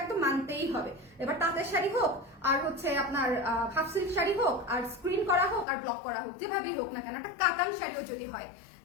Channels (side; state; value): right; drops out; at 5.7 s